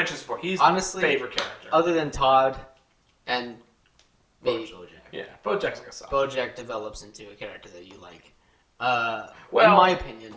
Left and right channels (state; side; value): identical; both; correlation 1.00